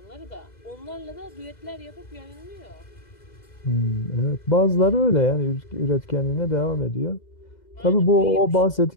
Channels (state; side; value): late; right; 2.0 ms